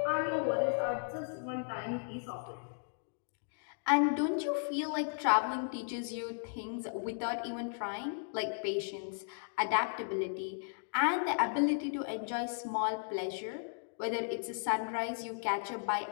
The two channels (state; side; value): silent; right; digital silence